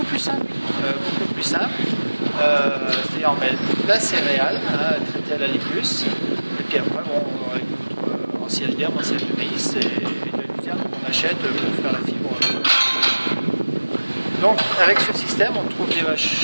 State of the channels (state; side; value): inverted; both; correlation -1.00